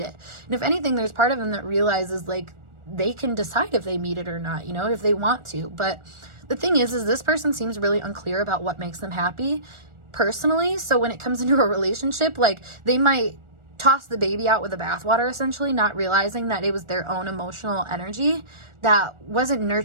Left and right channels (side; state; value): left; late; 1.4 ms